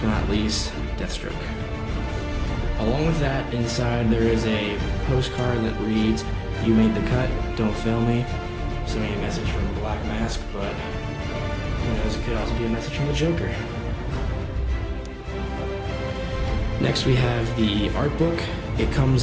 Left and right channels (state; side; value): identical; both; correlation 1.00